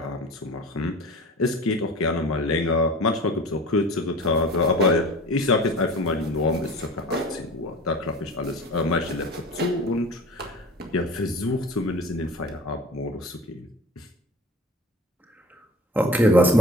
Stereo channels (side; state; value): both; normal; correlation 0.39